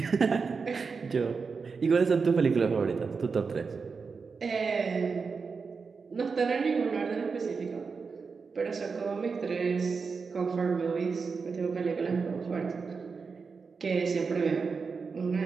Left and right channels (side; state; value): left; quieter; 5.0 dB